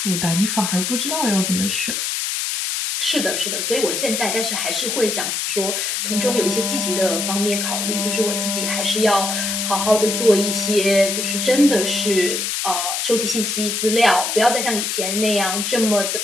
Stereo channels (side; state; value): left; noise; hiss, 1 dB below the sound